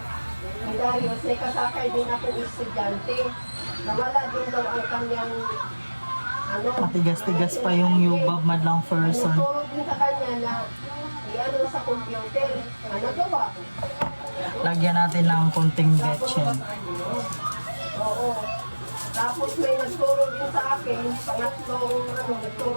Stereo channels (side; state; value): both; inverted; correlation -1.00